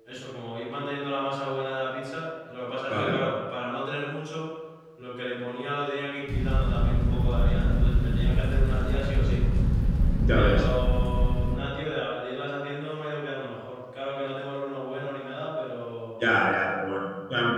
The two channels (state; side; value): identical; both; correlation 1.00